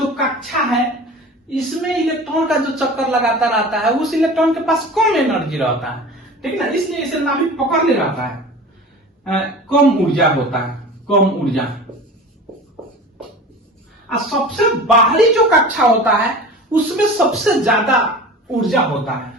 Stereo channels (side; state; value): both; normal; correlation 0.36